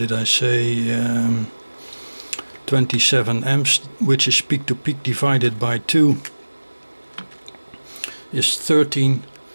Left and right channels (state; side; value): inverted; both; correlation -1.00